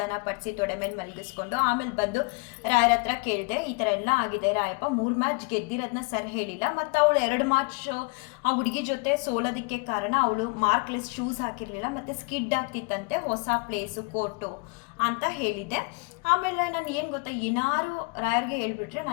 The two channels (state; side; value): quieter; right; 31.6 dB